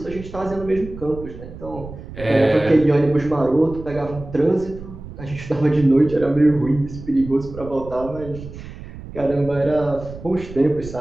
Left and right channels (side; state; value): right; noise; rumble, 13 dB below the sound